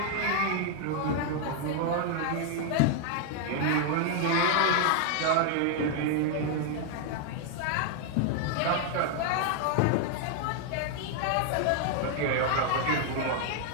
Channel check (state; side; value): different; both; correlation 0.00